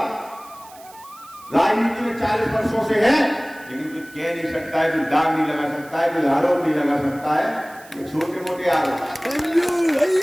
राजनीति में 40 वर्षों से है, लेकिन कोई कह नहीं सकता है, कोई दाग नहीं लगा सकता है, कोई आरोप नहीं लगा सकता है, छोटे मोटे आरोप।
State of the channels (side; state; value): right; noise; hiss, 23 dB below the sound